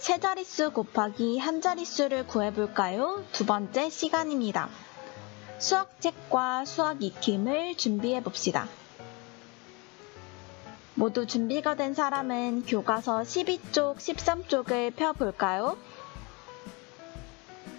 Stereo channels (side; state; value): right; quieter; 28.4 dB